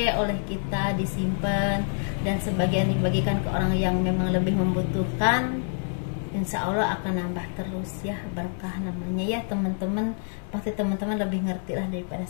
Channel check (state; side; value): silent; right; 60 dB below the other